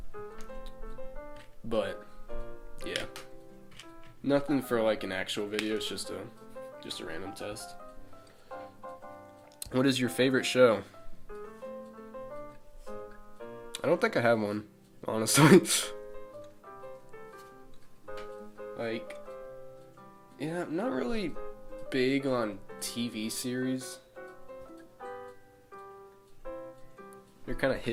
But yeah. Nothing for like an actual video, it's just a random test. What is your favorite show? I don't think I have one, honestly. Like, yeah, I'm not really big on TV series. They're kind of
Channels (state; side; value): identical; both; correlation 1.00